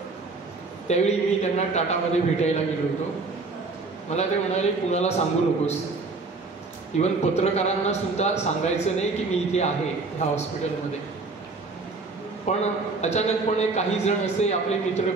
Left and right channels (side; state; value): left; quieter; 3.9 dB